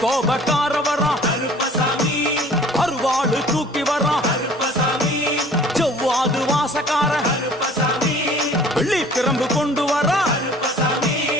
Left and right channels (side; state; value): both; normal; correlation 0.49